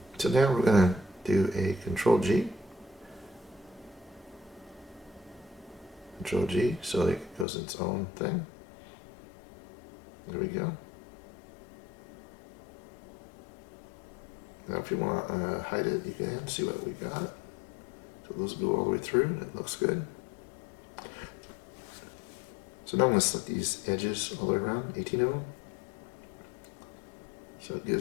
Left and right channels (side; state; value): right; drops out; at 7.5 s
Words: So now we're going to do a Control G. Control G, so it goes its own thing. There we go. Now if you want to hide it, you can see what we got. So those go all the way through. It looks good. So now I'm going to select these edges all the way around, 18 of them. So it